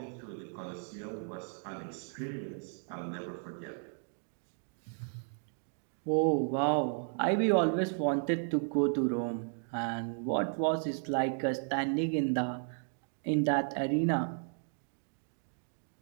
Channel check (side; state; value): left; silent; 55 dB below the other